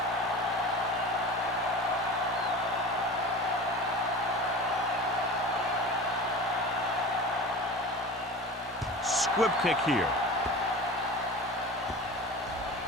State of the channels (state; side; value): normal; both; correlation 0.34